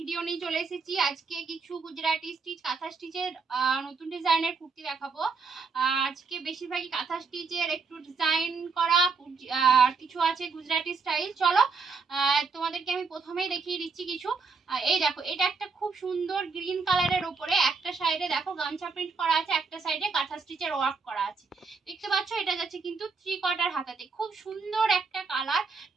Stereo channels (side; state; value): left; quieter; 4.7 dB